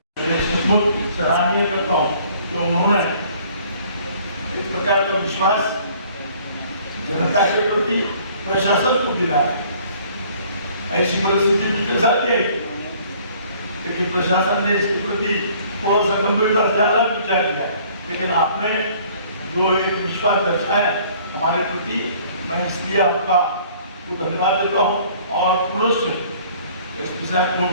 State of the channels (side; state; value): both; inverted; correlation -0.56